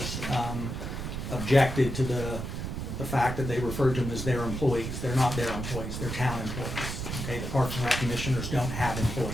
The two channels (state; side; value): noise; right; rumble, 5 dB below the sound